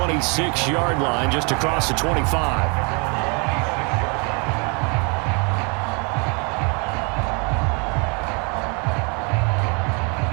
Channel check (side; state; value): left; quieter; 33.8 dB